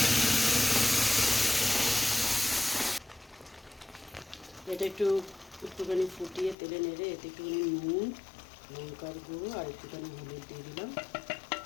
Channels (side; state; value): right; drops out; at 6.6 s